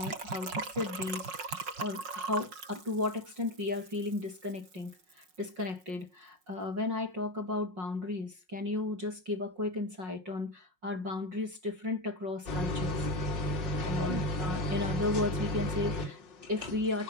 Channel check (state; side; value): late; left; 5.5 ms